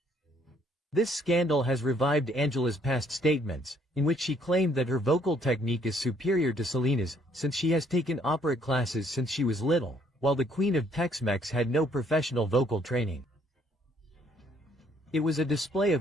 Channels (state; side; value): normal; both; correlation 0.65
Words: This scandal has revived Ángela's past statements, in which she claimed that her vocal technique is superior to 𝗖𝗠𝗢𝗡's, since she has taken opera classes since she was little, while the Queen of Tex-Mex had no professional vocal training. It was a display